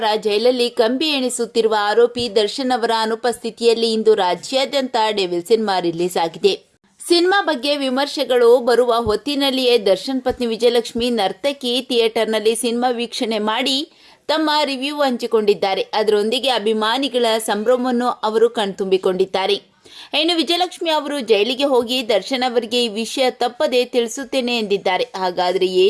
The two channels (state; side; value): identical; both; correlation 1.00